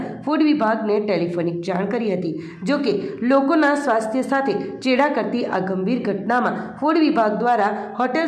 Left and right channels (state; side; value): identical; both; correlation 1.00